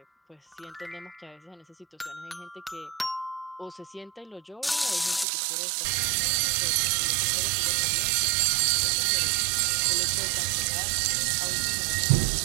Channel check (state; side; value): drops out; left; at 5.2 s